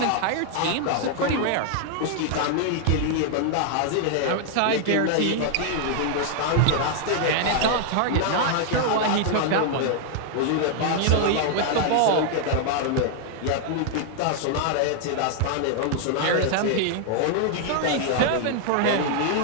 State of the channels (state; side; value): different; both; correlation 0.00